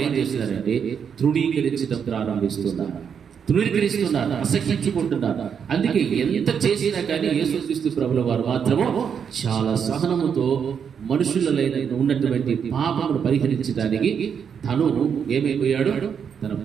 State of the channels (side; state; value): left; quieter; 7.3 dB